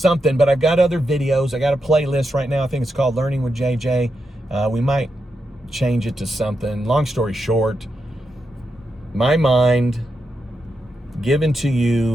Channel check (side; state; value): both; normal; correlation 0.86